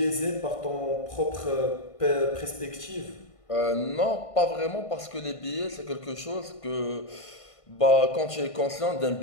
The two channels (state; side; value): late; right; 1.5 ms